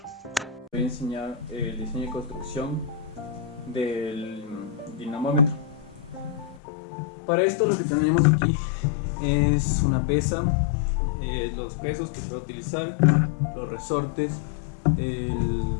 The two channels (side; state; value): right; drops out; at 6.6 s